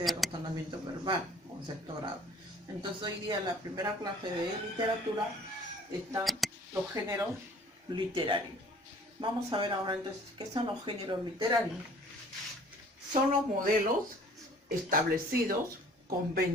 de razonamiento verbal con sexto grado. Entonces hoy día la primera clase de literatura están los géneros literarios. Vamos a ver ahora entonces qué son los géneros literarios. Son los modelos establecidos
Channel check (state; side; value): normal; both; correlation 0.52